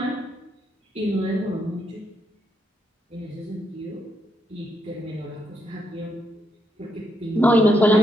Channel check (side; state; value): both; normal; correlation 0.78